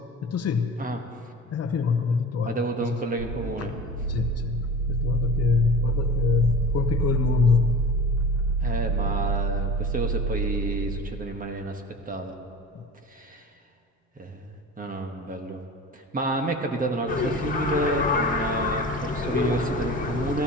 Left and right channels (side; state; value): both; normal; correlation 0.37